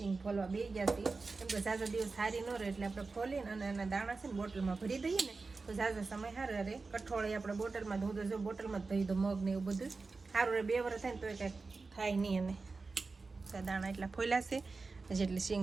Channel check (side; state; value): left; quieter; 4.1 dB